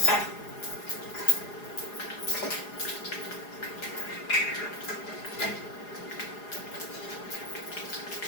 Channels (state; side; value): late; right; 4.8 ms